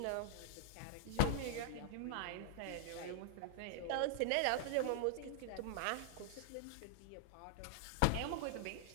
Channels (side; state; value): both; different; correlation -0.01